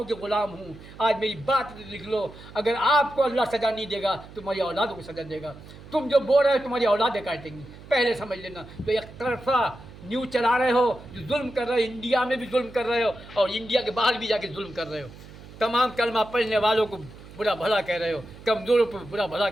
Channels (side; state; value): right; noise; hum, 18 dB below the sound